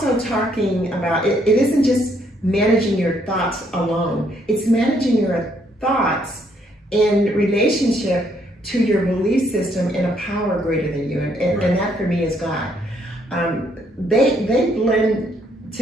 talking about, it isn't just managing your thoughts alone. It's managing your thoughts in relationship to your belief system in a power greater than you. And that for me is God. They blend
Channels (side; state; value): both; normal; correlation 0.70